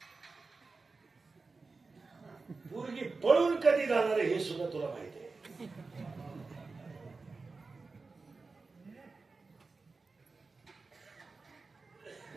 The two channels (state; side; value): quieter; left; 4.1 dB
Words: पोरगी पळून कधी जाणार आहे हे सुद्धा तुला माहिती आहे.